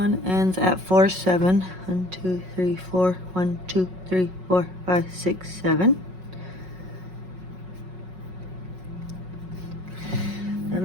ends at 4, 7. 1, 2, 3, 4. 1, 2, 3, 4, 5, 6, 7.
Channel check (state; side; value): late; left; 5.4 ms